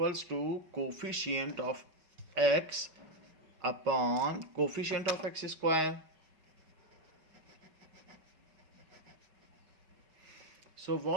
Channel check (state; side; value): late; left; 5.3 ms